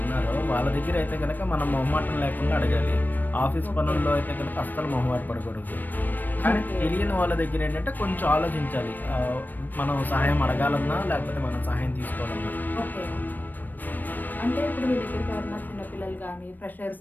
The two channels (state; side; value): late; right; 0.089 ms